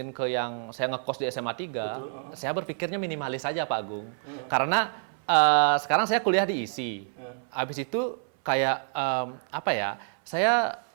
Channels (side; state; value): left; silent; 58 dB below the other